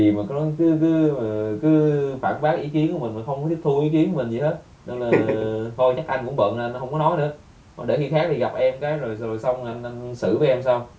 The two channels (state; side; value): identical; both; correlation 1.00